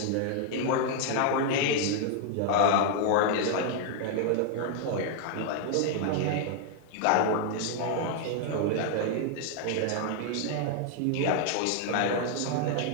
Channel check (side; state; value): both; different; correlation 0.00